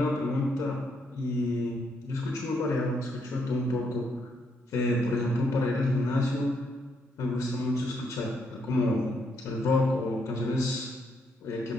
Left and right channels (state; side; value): normal; both; correlation 0.75